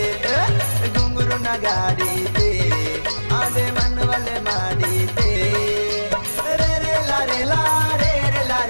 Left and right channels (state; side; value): inverted; both; correlation -1.00